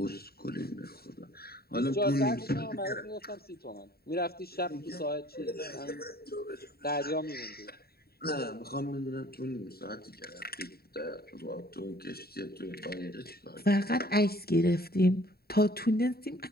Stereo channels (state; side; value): late; right; 0.45 ms